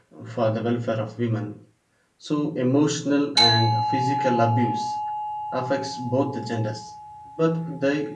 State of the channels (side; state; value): both; identical; correlation 1.00